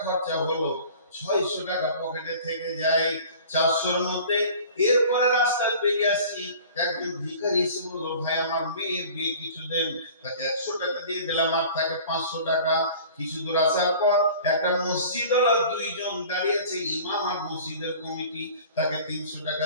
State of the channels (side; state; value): both; inverted; correlation -0.45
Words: খরচা হলো, 600 টাকা পকেটে থেকে যায় 400-র মধ্যে। এরপরে রাস্তায় বেরিয়ে আসছি, একজন ভিখারি এসে বললো, ভাই আমার মেয়ের বিয়ে কিছু দেন। তাকে 100 টাকা দিয়ে দিলাম, আর থাকে 500 টাকা। কিছু দূর আসার পর একটা মসজিদ ওরা 2 জন দাঁড়িয়েছে, ইমাম আর মসজিদের কমিটি। তাকে 300 টাকা